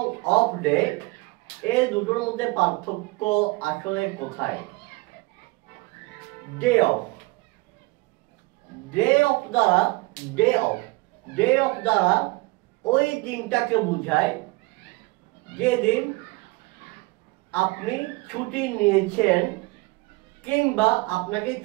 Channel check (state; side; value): quieter; left; 23.9 dB